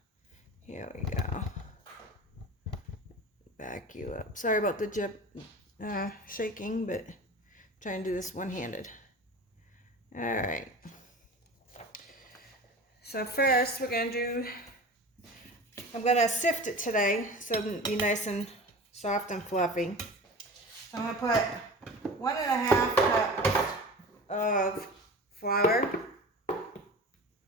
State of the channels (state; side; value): normal; both; correlation 0.35